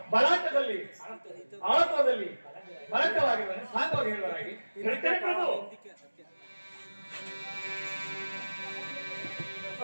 ಬಲಾಟದಲ್ಲಿ ಆಳತ್ವದಲ್ಲಿ ಬಲಕವಾಗಿರುವನೆ ಸಾಂಗವಾಗಿ ಹೇಳುವರಾಗಿ ಹೇಳ್ತೇನೆ ಪ್ರಭು.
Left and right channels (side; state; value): both; inverted; correlation -1.00